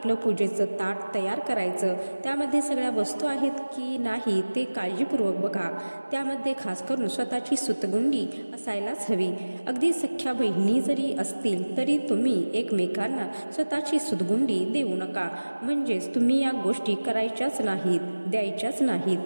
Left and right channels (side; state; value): both; inverted; correlation -1.00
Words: पूजेचं ताट तयार करायचं. त्यामध्ये सगळ्या वस्तू आहेत की नाही ते काळजीपूर्वक बघा. त्यामध्ये खास करून स्वतःची सूतगुंडी असायलाच हवी. अगदी सख्या बहिणी जरी असतील तरी तुम्ही एकमेकांना स्वतःची सूतगुंडी देऊ नका. म्हणजेच तुम्ही या गोष्टी करायच्याच नाहीत, द्यायच्याच नाहीत.